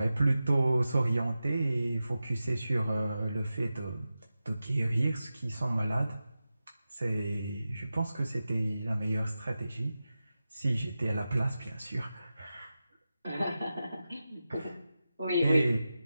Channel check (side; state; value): both; inverted; correlation -0.93